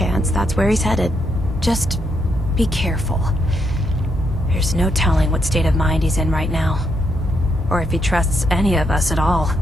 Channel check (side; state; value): both; normal; correlation 0.77